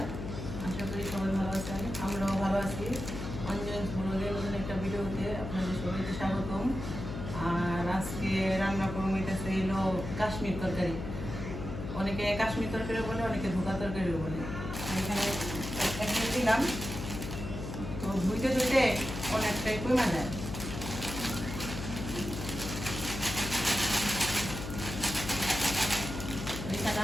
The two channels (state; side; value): noise; left; hum, 7 dB below the sound